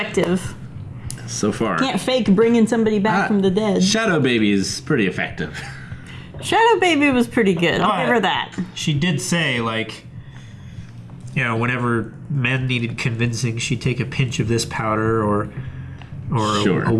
So far. Can't fake bringing somebody back from the dead. Shadow Baby is pretty effective. Shadow Baby was pretty good. I'll give her that. She did say, like, you know, whenever men needed convincing, she'd take a pinch of this powder or Sure. a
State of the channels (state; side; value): identical; both; correlation 1.00